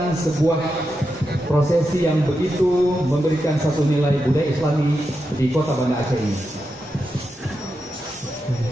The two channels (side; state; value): both; normal; correlation 0.87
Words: sebuah prosesi yang begitu memberikan satu nilai budaya Islami di Kota Banda Aceh ini.